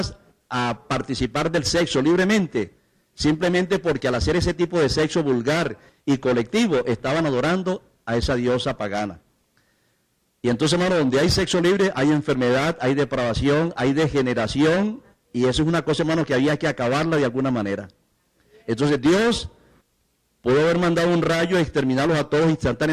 a participar del sexo libremente, simplemente porque al hacer ese tipo de sexo vulgar y colectivo, estaban adorando a esa diosa pagana. Y entonces, hermano, donde hay sexo libre, hay enfermedad, hay depravación, hay degeneración, y eso es una cosa, hermano, que había que acabarla de alguna manera. Entonces Dios pudo haber mandado un rayo y exterminarlos a todos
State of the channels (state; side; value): identical; both; correlation 1.00